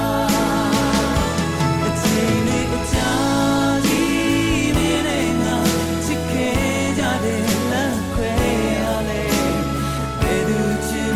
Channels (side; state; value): both; identical; correlation 1.00